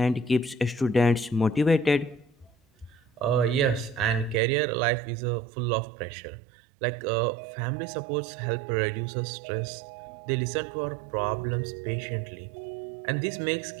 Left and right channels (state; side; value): drops out; left; at 4.4 s